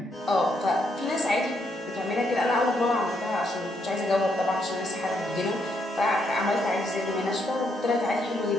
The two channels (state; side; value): normal; both; correlation 0.76